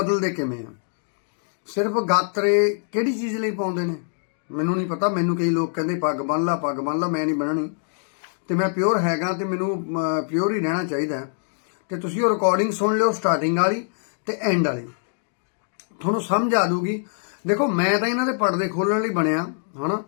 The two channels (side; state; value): right; silent; digital silence